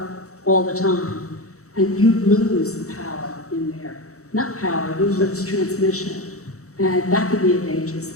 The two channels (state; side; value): late; right; 0.65 ms